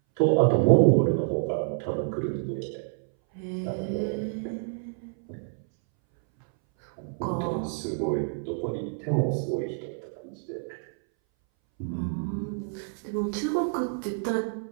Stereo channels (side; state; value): left; silent; 59 dB below the other